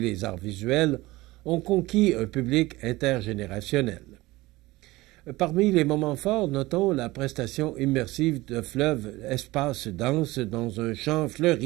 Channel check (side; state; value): left; quieter; 19.8 dB